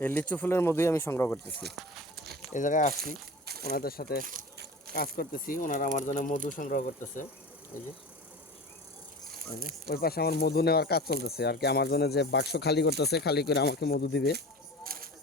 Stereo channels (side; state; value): both; normal; correlation 0.36